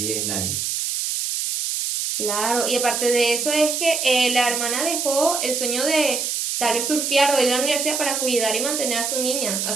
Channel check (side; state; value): right; noise; hiss, 1 dB below the sound